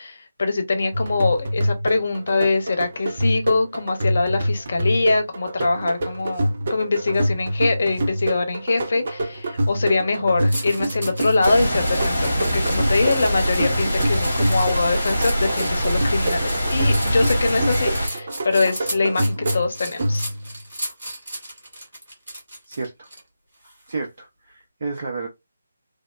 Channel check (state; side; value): inverted; both; correlation -0.92